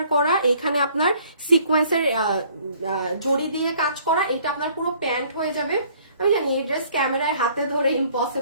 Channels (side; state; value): both; inverted; correlation -0.58